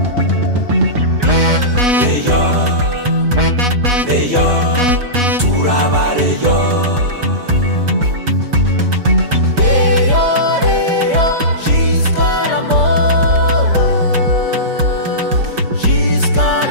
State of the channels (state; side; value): late; left; 5.3 ms